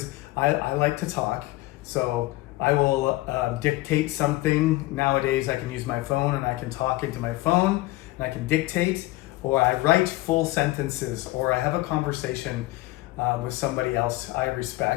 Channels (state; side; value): quieter; right; 19.0 dB